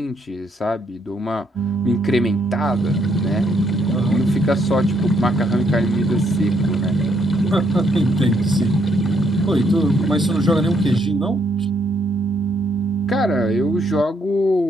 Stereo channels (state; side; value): normal; both; correlation 0.73